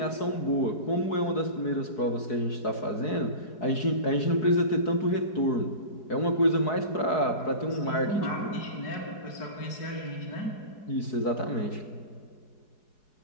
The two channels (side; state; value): right; late; 4.7 ms